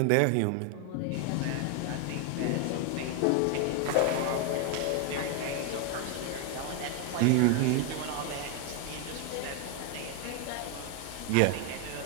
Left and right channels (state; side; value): different; both; correlation 0.01